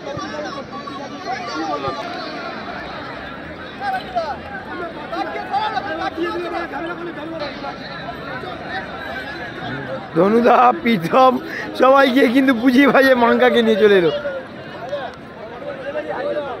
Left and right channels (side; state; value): both; identical; correlation 1.00